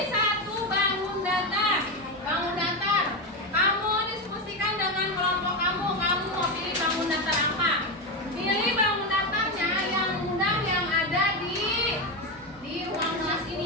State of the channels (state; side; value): normal; both; correlation 0.13